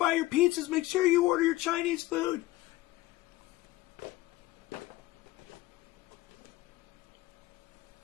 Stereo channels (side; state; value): right; quieter; 17.9 dB